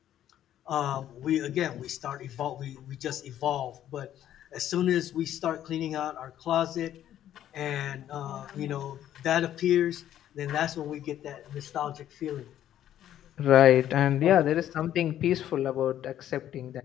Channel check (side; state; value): right; quieter; 11.5 dB